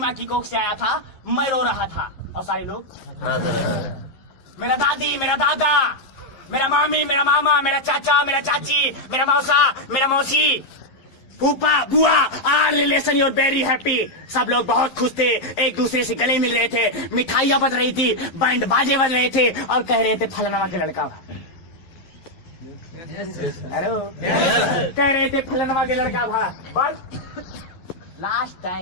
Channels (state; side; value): late; right; 11 ms